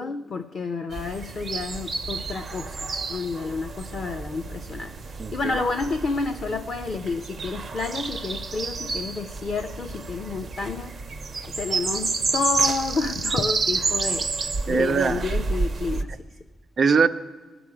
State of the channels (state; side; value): normal; both; correlation 0.78